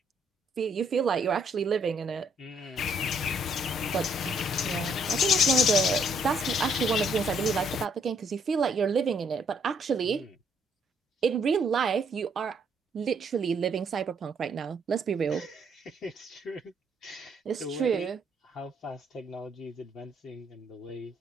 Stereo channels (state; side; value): normal; both; correlation 0.69